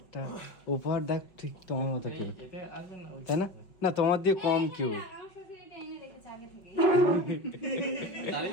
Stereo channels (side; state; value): right; late; 5.5 ms